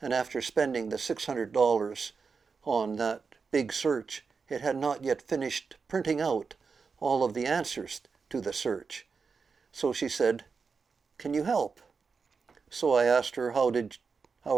after spending the $600 on that big search, it had not yet finished printing out all of the answers to the search. So she said, "Can you help?" So I asked her, how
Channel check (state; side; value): quieter; left; 5.2 dB